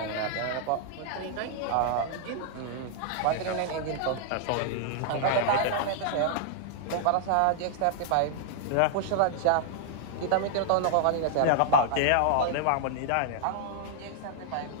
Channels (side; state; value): both; different; correlation -0.01